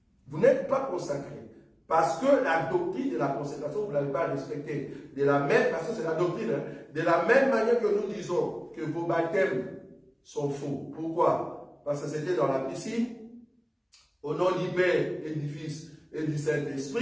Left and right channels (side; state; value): both; identical; correlation 1.00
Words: Vous n'êtes pas consacrés. Parce que la doctrine de la consécration, vous ne l'avez pas respectée. De la même, parce que c'est la doctrine, de la même manière que nous disons que vos baptêmes sont faux. Pourquoi? Parce que c'était dans la piscine, au nom du Père et du Fils et du